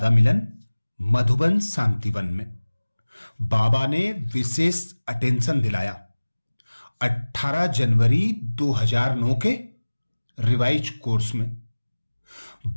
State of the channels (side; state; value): both; inverted; correlation -1.00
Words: मिलन मधुबन शांतिवन में बाबा ने विशेष अटेंशन दिलाया। 18 जनवरी 2009 के रिवाइज कोर्स में